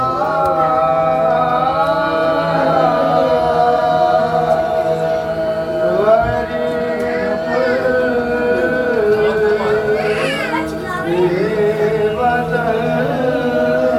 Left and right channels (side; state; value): both; identical; correlation 1.00